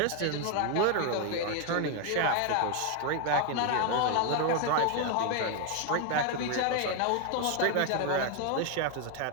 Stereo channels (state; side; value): different; both; correlation 0.01